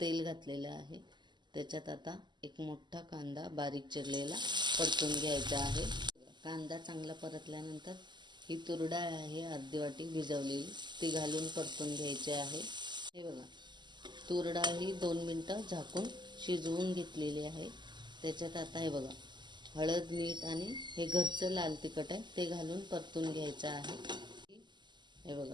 घातलेलं आहे. त्याच्यात आता एक मोठा कांदा बारीक चिरलेला परतून घ्यायचा आहे. कांदा चांगला परतल्यानंतर ही तूर डाळ आहे अर्धी वाटी भिजवलेली, ती घालून परतून घ्यायची आहे. हे बघा, तूर डाळ ही 2 मिनटं झाकून शिजवून घेतलेली आहे. त्याच्यात आता हे बघा, हळद, मीठ आणि हे घरचं लाल तिखट आहे ते घालून परतून घ्यायचं आहे. हे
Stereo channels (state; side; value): late; left; 0.21 ms